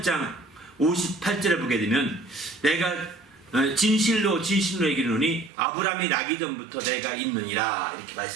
58절에 보게 되면 내가 진실로 얘기하노니 아브라함이 나기 전부터 내가 있느니라 이렇게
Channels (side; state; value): left; drops out; at 5.5 s